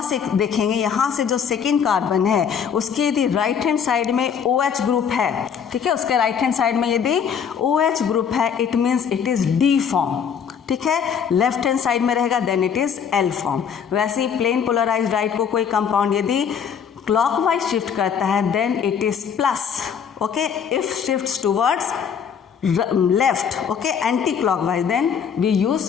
से देखेंगे, यहाँ से जो सेकेंड कार्बन है उसके यदि राइट हैंड साइड में OH ग्रुप है, ठीक है, उसके राइट हैंड साइड में यदि OH ग्रुप है it means it is D form. ठीक है, लेफ्ट हैंड साइड में रहेगा then it is L form. वैसे ही प्लेन पोलराइज्ड लाइट को कोई कंपाउंड यदि क्लॉकवाइज शिफ्ट करता है then it is plus. Okay, if shifts towards left, okay, anti clockwise then we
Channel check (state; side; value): quieter; right; 7.3 dB